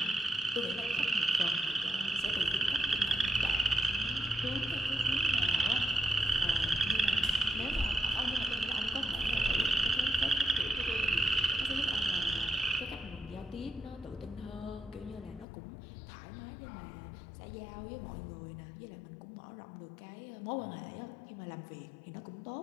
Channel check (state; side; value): drops out; right; at 15.5 s